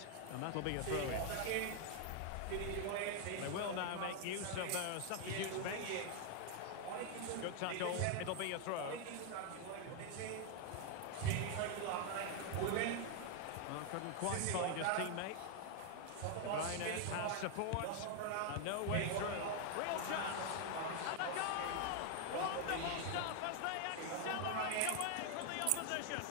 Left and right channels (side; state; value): both; different; correlation 0.00